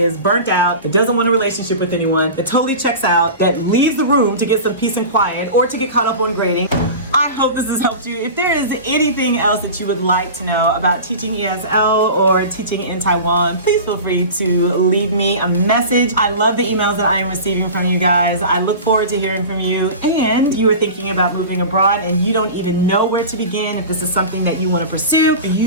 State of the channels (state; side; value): inverted; both; correlation -0.33